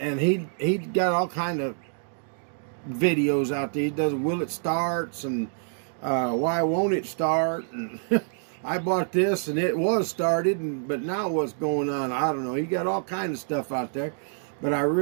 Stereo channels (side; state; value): left; silent; digital silence